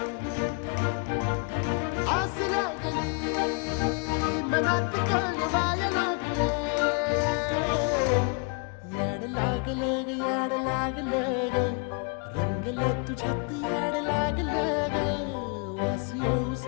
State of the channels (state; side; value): quieter; right; 35.2 dB